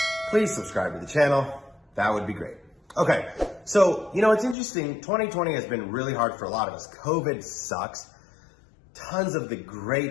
please subscribe to the channel, that would be great. Okay, so, it's interesting, 2020 has been really hard for a lot of us. COVID sucks, tons of the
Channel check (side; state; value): right; drops out; at 4.5 s